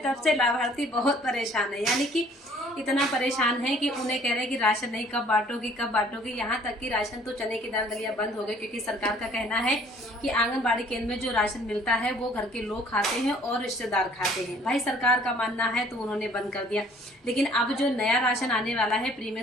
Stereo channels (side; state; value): both; normal; correlation 0.57